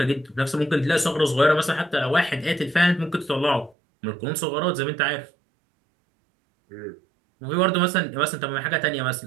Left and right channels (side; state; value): left; drops out; at 3.8 s